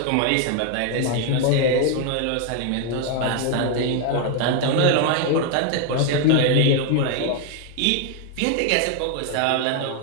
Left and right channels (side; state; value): both; different; correlation 0.01